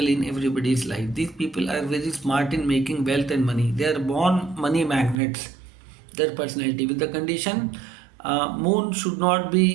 in everybody's life. These people are very smart in making wealth and money. They are born money magnets, their personality, with the condition moon should not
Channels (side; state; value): left; drops out; at 5.2 s